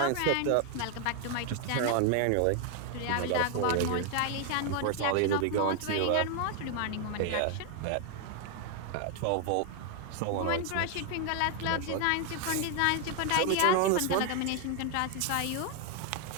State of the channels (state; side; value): different; both; correlation 0.00